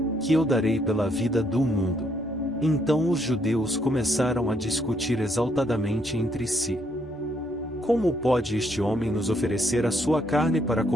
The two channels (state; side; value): normal; both; correlation 0.72